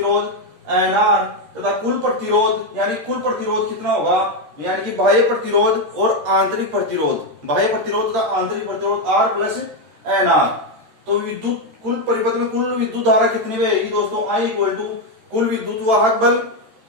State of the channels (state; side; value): late; left; 13 ms